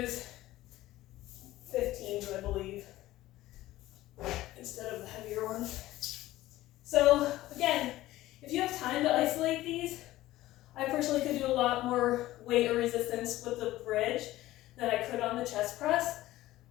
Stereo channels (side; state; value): right; quieter; 16.1 dB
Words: 15s, I believe, instead of the heavier one. So again, if you have time to isolate these, I personally could do a lot more weight or resistance with the bridge than I could on the chest press,